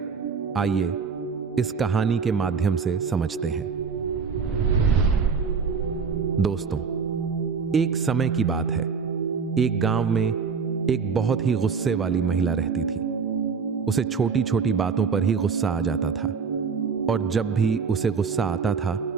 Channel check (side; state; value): left; quieter; 5.6 dB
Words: आइए इस कहानी के माध्यम से समझते हैं। दोस्तों, एक समय की बात है। एक गांव में एक बहुत ही गुस्से वाली महिला रहती थी। उसे छोटी छोटी बातों पर ही गुस्सा आ जाता था और जब भी उसे गुस्सा आता था